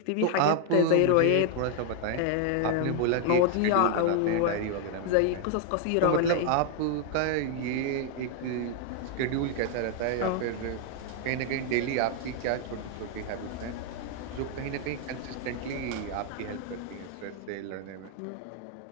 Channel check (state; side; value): different; both; correlation 0.00